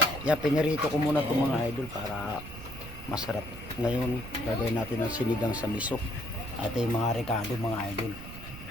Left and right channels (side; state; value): right; noise; rumble, 13 dB below the sound